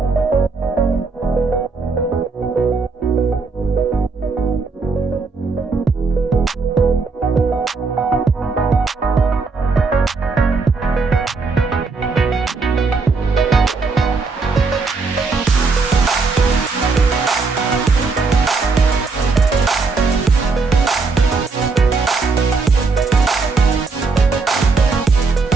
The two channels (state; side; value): quieter; left; 4.2 dB